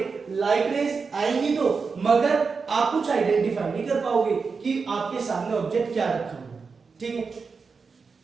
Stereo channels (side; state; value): left; quieter; 5.0 dB